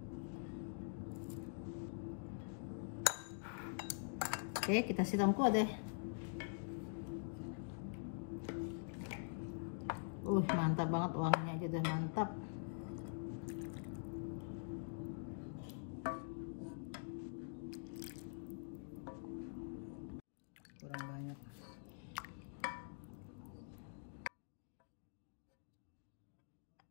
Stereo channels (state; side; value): silent; right; digital silence